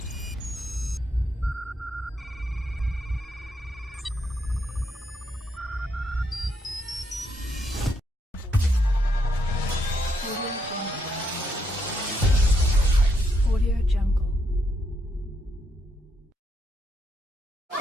Audio Jungle. Audio Jungle.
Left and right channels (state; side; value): normal; both; correlation 0.77